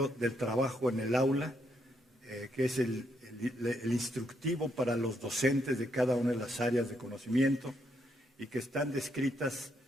del trabajo en el aula, que es el instructivo para los docentes de cada una de las áreas de conocimiento, y que están descritas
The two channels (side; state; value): both; normal; correlation 0.76